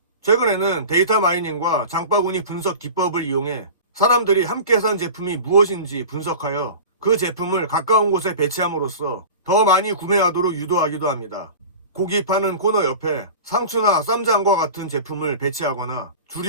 최근에는 데이터 마이닝과 장바구니 분석 기법을 이용해 사람들이 함께 산 제품이 무엇인지 분석하여 그 제품을 가까운 곳에 배치함으로써 더 많이 구매하도록 유도하기도 합니다. 고기 파는 코너 옆에 상추나 쌈장과 같은 제품을 배치하거나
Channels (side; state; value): both; inverted; correlation -0.35